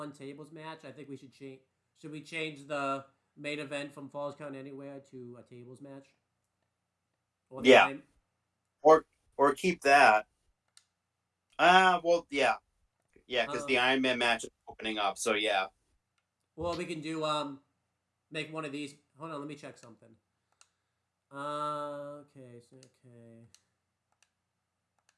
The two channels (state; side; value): identical; both; correlation 1.00